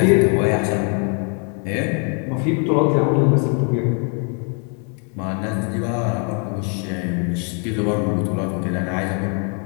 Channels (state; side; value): quieter; right; 39.3 dB